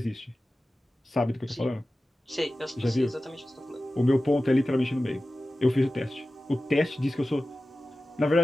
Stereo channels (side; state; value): both; normal; correlation 0.95